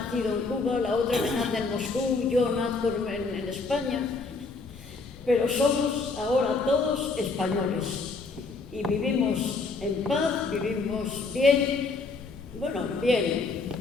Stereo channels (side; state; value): right; quieter; 3.9 dB